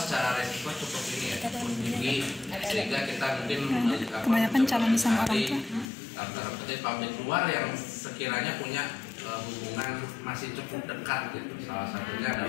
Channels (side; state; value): right; drops out; at 5.9 s